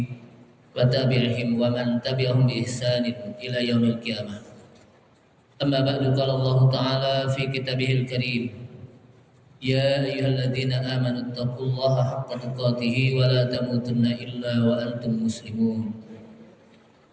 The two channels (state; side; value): identical; both; correlation 1.00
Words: wa tabi'ihim wa man tabi'ahum bi ihsanin ila yaumil qiyamah. Amma ba'du, qala Allah Ta'ala fi kitabihil karim, ya ayyuhalladzina amanu taqullaha haqqa tuqatih wa la tamutunna illa wa antum muslimun.